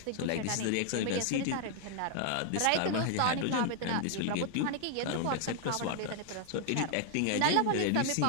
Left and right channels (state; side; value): different; both; correlation 0.00